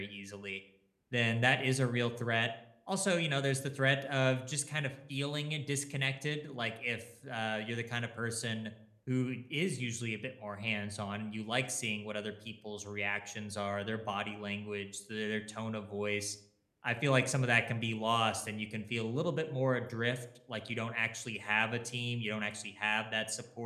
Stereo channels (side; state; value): both; identical; correlation 1.00